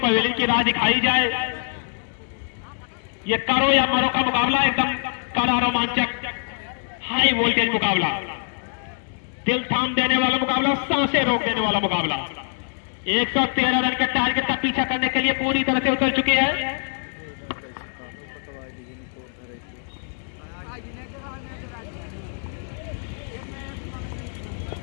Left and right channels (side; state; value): right; silent; digital silence